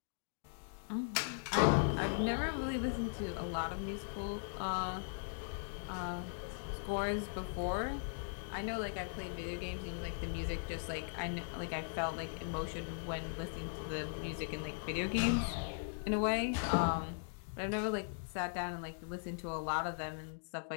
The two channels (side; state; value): right; silent; digital silence